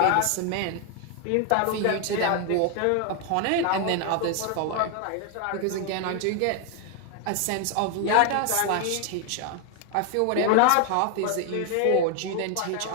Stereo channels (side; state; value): both; different; correlation 0.00